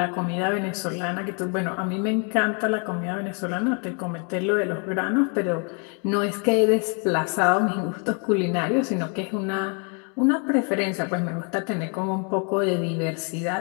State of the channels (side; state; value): right; quieter; 37.9 dB